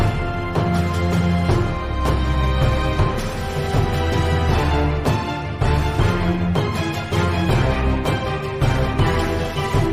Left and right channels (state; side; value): identical; both; correlation 1.00